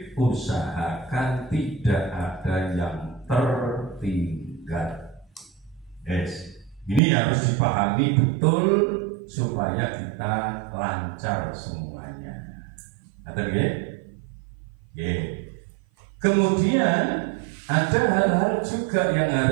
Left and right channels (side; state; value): left; drops out; at 7.0 s